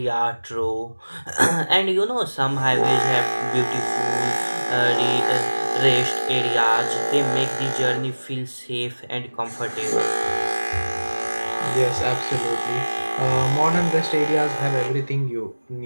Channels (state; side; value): inverted; both; correlation -1.00